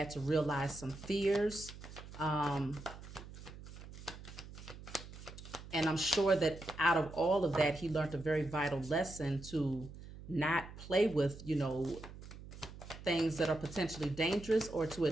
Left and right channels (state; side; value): noise; right; hum, 14 dB below the sound